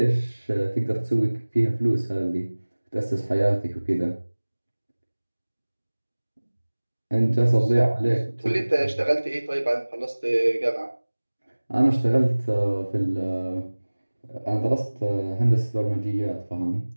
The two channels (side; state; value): both; inverted; correlation -1.00